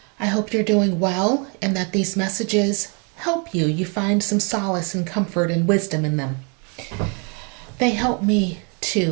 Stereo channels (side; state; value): left; quieter; 35.5 dB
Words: I hope you're doing well and that these messages help you. You find some solace and comfort and wisdom in them. They help me